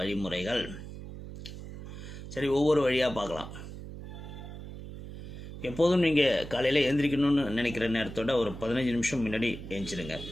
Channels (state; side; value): noise; right; hum, 11 dB below the sound